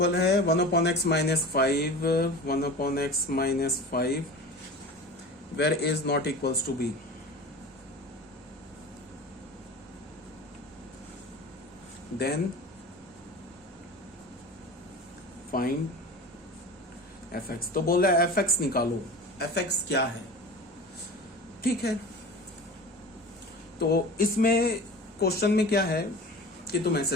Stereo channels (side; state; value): both; normal; correlation 0.35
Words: है? 1/x -5, 1/x -5 where a is not equals to b। then find fx। तो बोल रहा है fx निकालो। fx क्या है? ठीक है, तो इसमें क्वेश्चन में क्या है कि तुम